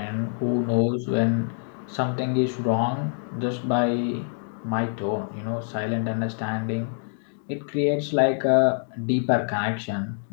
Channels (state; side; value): silent; right; digital silence